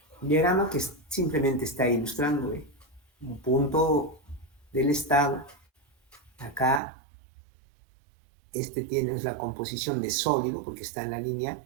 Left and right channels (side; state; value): left; drops out; at 6.8 s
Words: diagrama que simplemente está ilustrando un punto del estado. Acá, tiene la composición de sólido, porque está en la línea